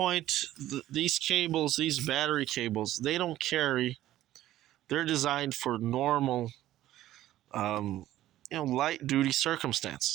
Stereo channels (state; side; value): quieter; left; 14.0 dB